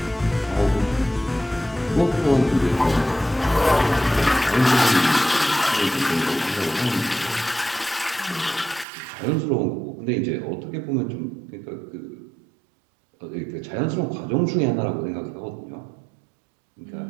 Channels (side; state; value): left; drops out; at 8.8 s